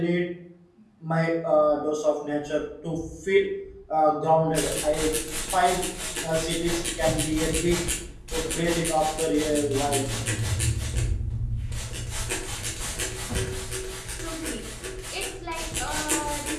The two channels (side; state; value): both; identical; correlation 1.00